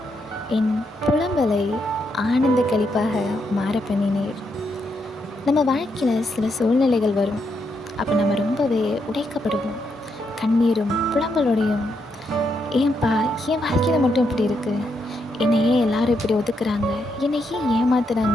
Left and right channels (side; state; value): both; normal; correlation 0.80